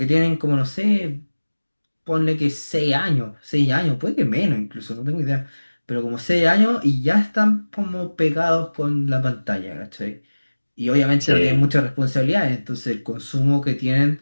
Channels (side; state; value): both; inverted; correlation -1.00